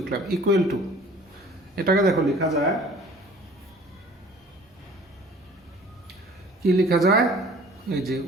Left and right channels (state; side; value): normal; both; correlation 0.49